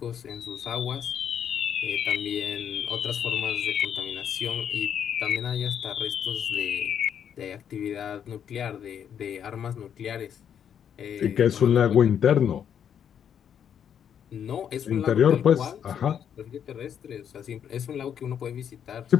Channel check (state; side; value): quieter; right; 8.6 dB